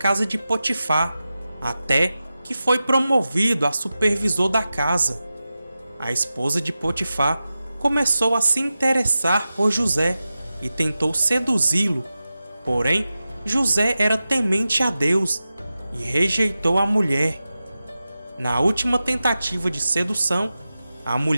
de Potifar, até que foi promovido a supervisor da casa. A esposa de Potifar começou a se interessar por José e tentou seduzi-lo. Porém, José era temente a Deus e rejeitou a mulher. Na última tentativa de sedução, a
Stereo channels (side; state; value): both; inverted; correlation -0.94